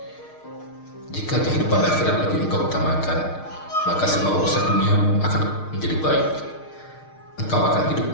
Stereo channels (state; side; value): late; right; 6.5 ms